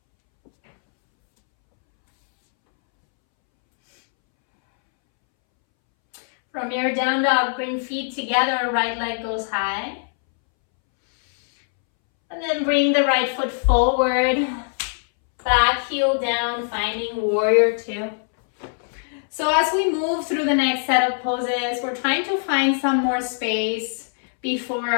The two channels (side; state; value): right; silent; 64 dB below the other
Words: From your down dog, bring feet together, right leg goes high. And then bring the right foot forward, back heel down, finding warrior 2. So as we move through the next set of poses, we're trying to find some more space before